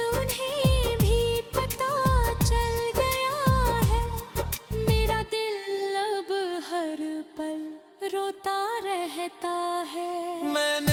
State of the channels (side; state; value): both; identical; correlation 1.00